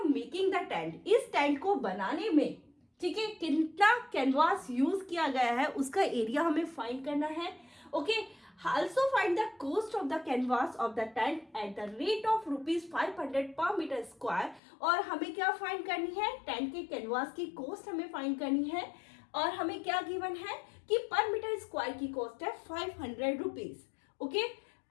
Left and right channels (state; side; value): drops out; right; at 14.6 s